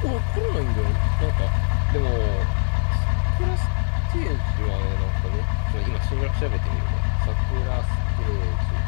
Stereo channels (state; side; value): silent; right; digital silence